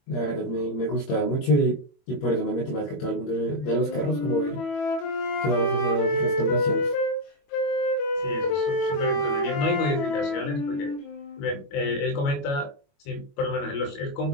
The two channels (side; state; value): right; late; 21 ms